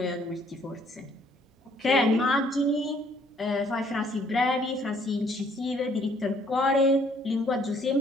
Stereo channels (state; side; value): normal; both; correlation 0.63